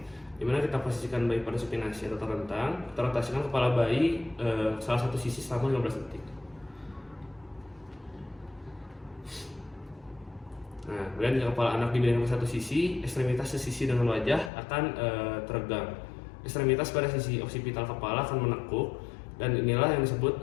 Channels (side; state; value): right; drops out; at 14.5 s